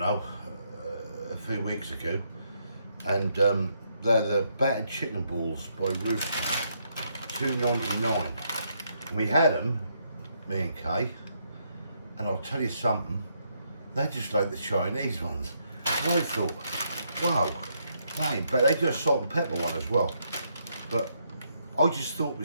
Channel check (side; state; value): both; inverted; correlation -0.76